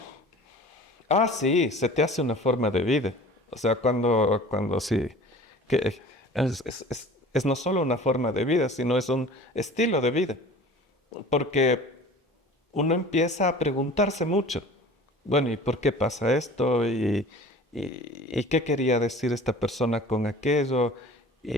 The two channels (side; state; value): both; normal; correlation 0.43